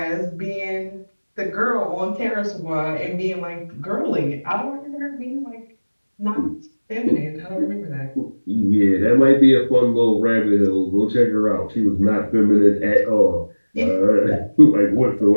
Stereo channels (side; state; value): both; inverted; correlation -1.00